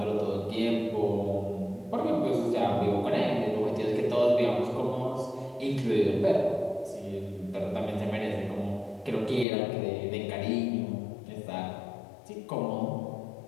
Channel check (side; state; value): right; drops out; at 9.5 s